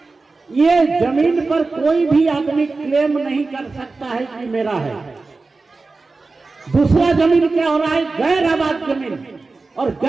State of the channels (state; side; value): quieter; left; 3.8 dB